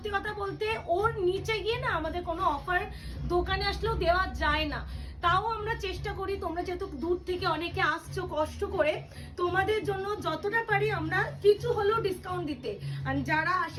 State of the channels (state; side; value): identical; both; correlation 1.00